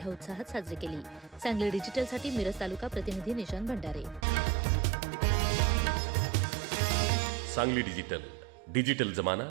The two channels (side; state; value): left; drops out; at 4.2 s